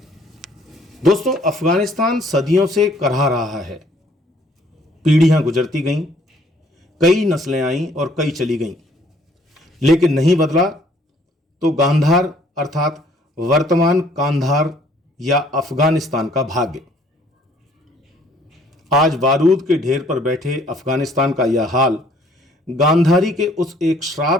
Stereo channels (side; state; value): both; normal; correlation 0.61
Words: दोस्तों, अफगानिस्तान सदियों से करहा रहा है। पीढ़ियां गुजरती गईं, कई नस्लें आईं और कई चली गईं, लेकिन नहीं बदला तो गांधार अर्थात वर्तमान कांधार या अफगानिस्तान का भाग्य। आज बारूद के ढेर पर बैठे अफगानिस्तान का यह हाल गांधारी के उस एक